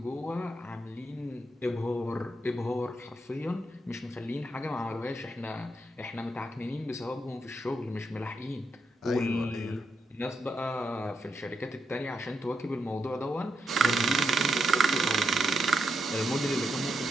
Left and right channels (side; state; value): both; normal; correlation 0.82